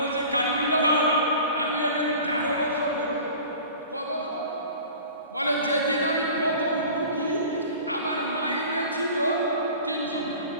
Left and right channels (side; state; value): both; inverted; correlation -0.41